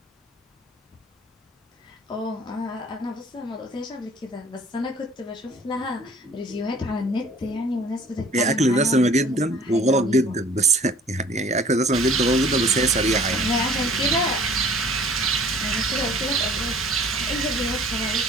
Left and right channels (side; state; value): both; normal; correlation 0.51